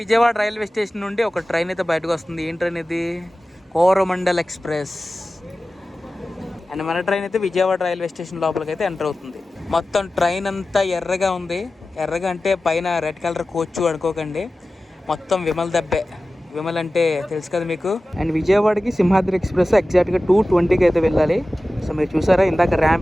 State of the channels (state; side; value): normal; both; correlation 0.95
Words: విజయవాడ రైల్వే స్టేషన్ నుండి ఒక ట్రైన్ అయితే బయటకు వస్తుంది. ఏం ట్రైన్ ఇది? కోరమండల్ ఎక్స్ప్రెస్. అండ్ మన ట్రైన్ అయితే విజయవాడ రైల్వే స్టేషన్ లోపలికి అయితే ఎంటర్ అవుతుంది. మొత్తం ట్రైన్ అంతా ఎర్రగా ఉంది. ఎర్రగా అంటే పైన రెడ్ కలర్ కోచ్ అనుకోకండి, మొత్తం విమల్ దబ్బే. విమల్ అంటే తెలుసు కదా మీకు. అండ్ విజయవాడకి సింహాద్రి ఎక్స్ప్రెస్ ఎగ్జాక్ట్గా 2:20కి అయితే వెళ్ళాలి. సో మీరు చూసారా ఇందాక